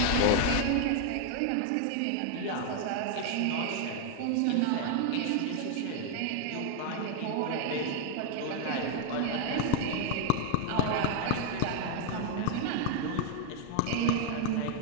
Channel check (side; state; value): both; different; correlation 0.00